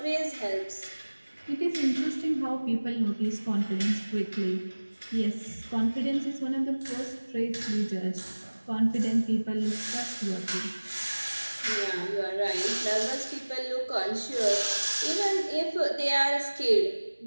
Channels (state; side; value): inverted; both; correlation -1.00